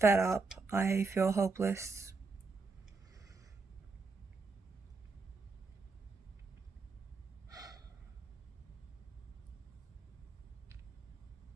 up, I feel hopeless.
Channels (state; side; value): quieter; left; 4.0 dB